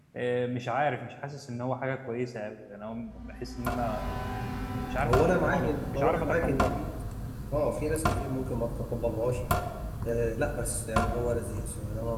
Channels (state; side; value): identical; both; correlation 1.00